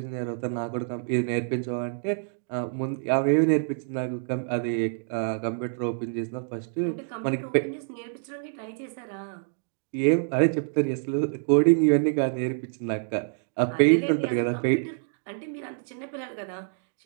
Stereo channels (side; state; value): left; silent; digital silence